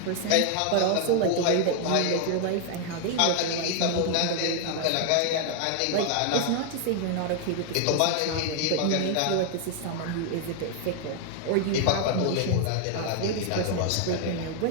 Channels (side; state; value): both; different; correlation 0.00